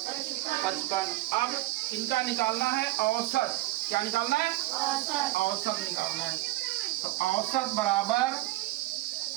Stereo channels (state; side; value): quieter; left; 18.6 dB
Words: 55। अब इनका निकालना है औसत। क्या निकालना है, औसत निकालना है। तो औसत